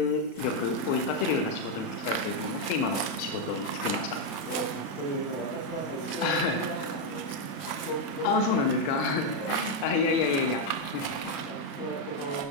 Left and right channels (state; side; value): late; right; 35 ms